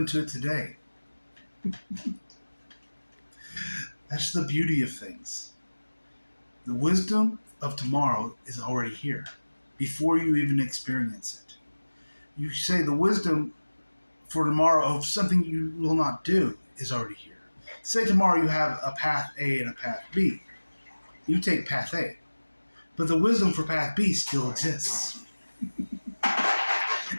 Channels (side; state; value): both; inverted; correlation -1.00